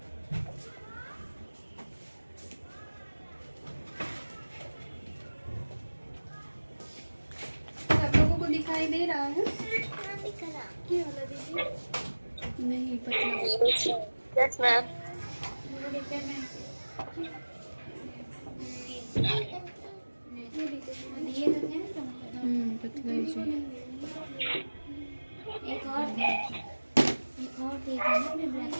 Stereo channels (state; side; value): inverted; both; correlation -1.00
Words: सब लोगों को दिखाई दे रहा है? ये वाला दीजिए। नहीं पतला। Yes ma'am. पतला ही चाहिए। एक और दे, एक और दे देना अपने ब्लैक